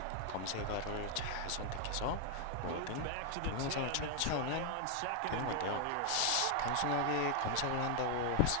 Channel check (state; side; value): different; both; correlation 0.00